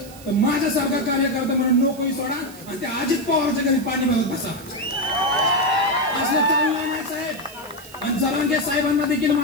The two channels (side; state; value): right; noise; hiss, 19 dB below the sound